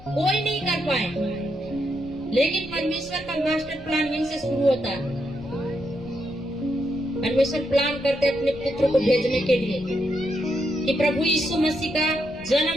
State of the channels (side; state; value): left; noise; rumble, 20 dB below the sound